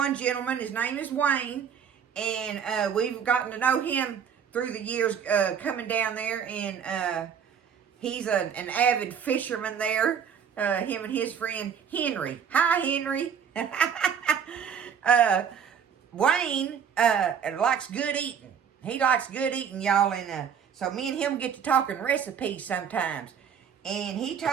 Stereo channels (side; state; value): left; quieter; 7.6 dB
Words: gentleman, his name is Wayne, and we've gotten to know him through the years coming down there, and he's an avid fisherman there, him and his friend Henry. Hi, Henry. Wayne likes good eating. He likes good eating, y'all, and so me and him get to talking recipes sometimes. And he